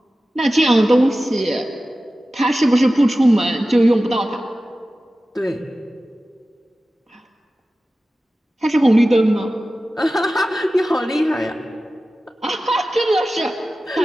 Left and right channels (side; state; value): both; normal; correlation 0.95